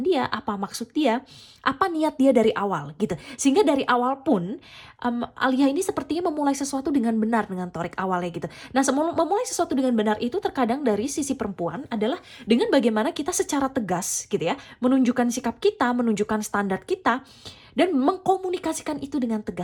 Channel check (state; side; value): identical; both; correlation 1.00